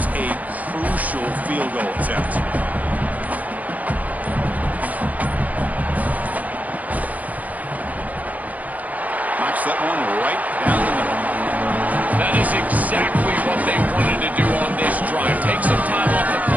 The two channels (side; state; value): left; late; 0.076 ms